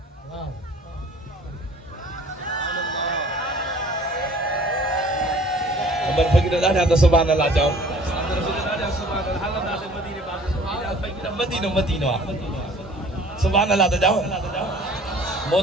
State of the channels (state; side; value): normal; both; correlation 0.51